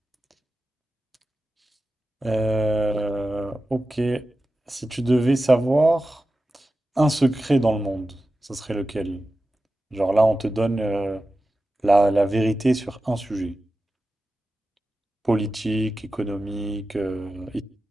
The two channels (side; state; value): both; normal; correlation 0.93